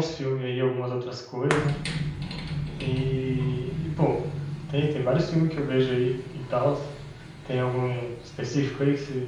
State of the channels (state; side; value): identical; both; correlation 1.00